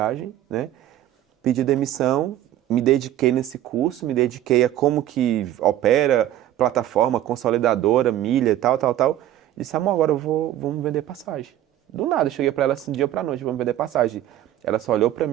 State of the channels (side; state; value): left; quieter; 12.8 dB